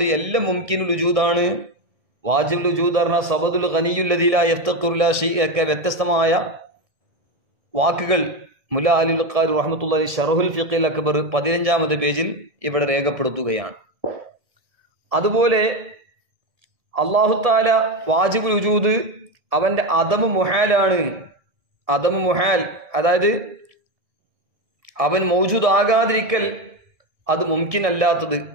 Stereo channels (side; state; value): left; late; 1.6 ms